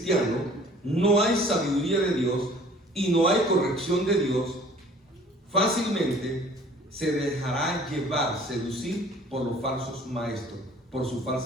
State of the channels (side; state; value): both; normal; correlation 0.51